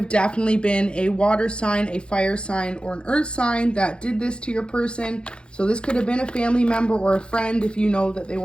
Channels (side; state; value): right; late; 0.054 ms